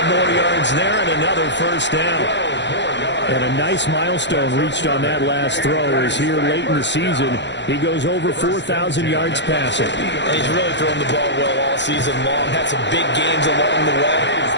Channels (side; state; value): right; late; 0.52 ms